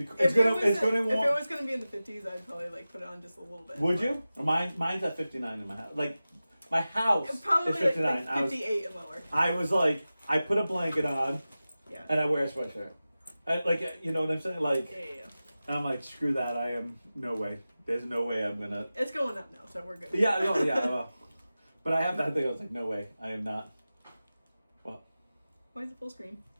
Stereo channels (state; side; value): inverted; both; correlation -0.95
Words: If it was gonna be in the 50s, I'd probably like put it on just a little bit. Would you? Mine's at 59 in my house. Like, my house Probably is 59. like 58 and lower. I was like, I put a blanket on, Yeah. and I wear a sweatshirt. Like, you know what I'm saying? Like, Yeah. I'm like, screw that. I am no way. There's no way I'm gonna. It's going up now, so we're good. Yeah, no, yeah. Well, but I have that thing. I was like, no way. I am not. What? Why is it full screen?